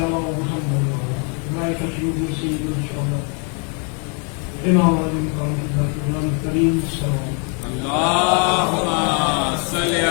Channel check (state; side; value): quieter; right; 37.2 dB